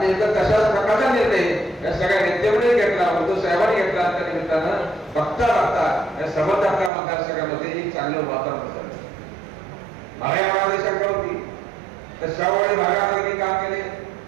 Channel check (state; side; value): drops out; left; at 6.9 s